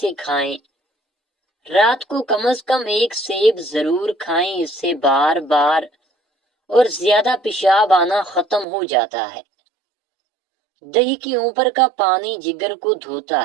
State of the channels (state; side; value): drops out; left; at 8.7 s